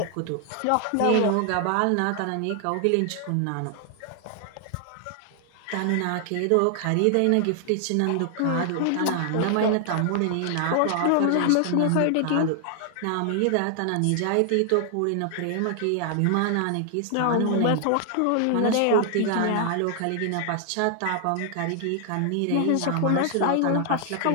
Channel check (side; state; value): both; different; correlation 0.00